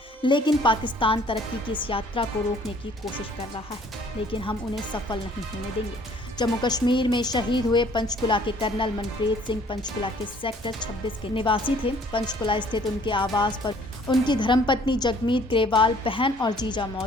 लेकिन पाकिस्तान तरक्की की इस यात्रा को रोकने की कोशिश कर रहा है, लेकिन हम उन्हें सफल नहीं होने देंगे। जम्मू कश्मीर में शहीद हुए पंचकुला के कर्नल मनप्रीत सिंह पंचकुला के सेक्टर 26 के निवासी थे। पंचकुला स्थित उनके आवास पर उनकी धर्मपत्नी जगमीत ग्रेवाल, बहन और जीजा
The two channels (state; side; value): normal; both; correlation 0.57